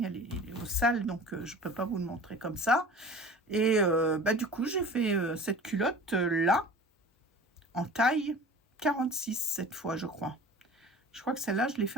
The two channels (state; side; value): normal; both; correlation 0.42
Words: elle est au sale, donc je peux pas vous le montrer comme ça. Et du coup j'ai fait cette culotte là en taille 46 cette fois, je crois. Je crois que celle-là je l'ai fait